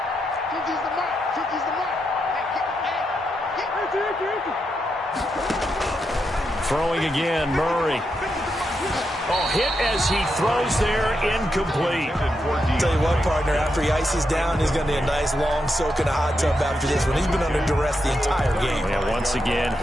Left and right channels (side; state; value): both; normal; correlation 0.84